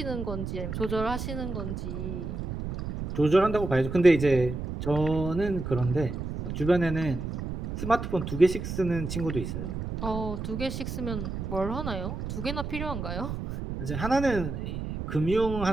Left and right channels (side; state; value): right; noise; rumble, 5 dB below the sound